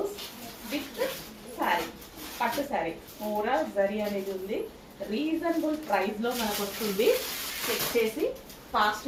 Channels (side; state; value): both; identical; correlation 1.00